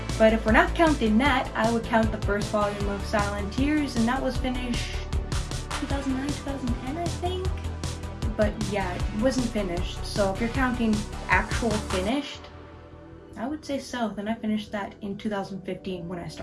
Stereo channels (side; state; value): both; identical; correlation 1.00